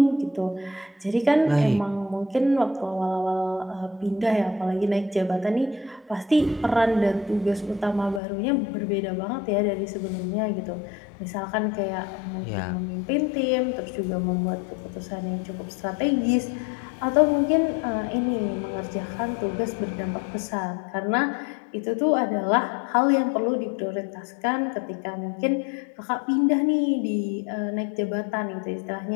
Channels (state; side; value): drops out; right; at 8.2 s